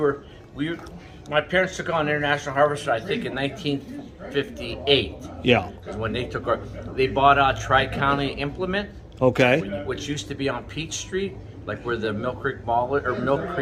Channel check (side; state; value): both; identical; correlation 1.00